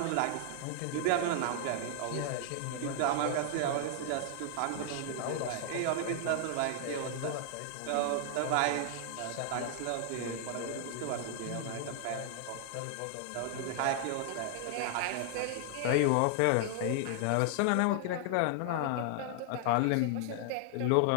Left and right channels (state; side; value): different; both; correlation 0.00